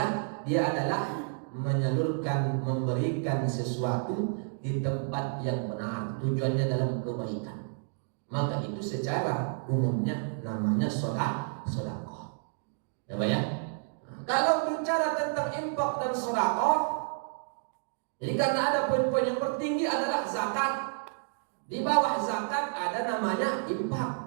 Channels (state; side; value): silent; left; digital silence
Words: dia adalah menyalurkan, memberikan sesuatu di tempat yang benar, tujuannya dalam kebaikan. Maka itu secara umumnya namanya sedekah. Ya Pak ya? Kalau bicara tentang infak dan sedekah, jadi karena ada poin-poin yang tertinggi adalah zakat. Di bawah zakat ada namanya infak.